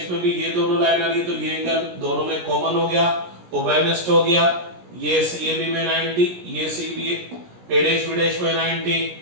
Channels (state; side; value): late; left; 17 ms